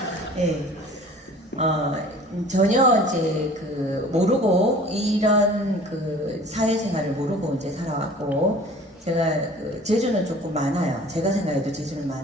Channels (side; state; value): both; normal; correlation 0.46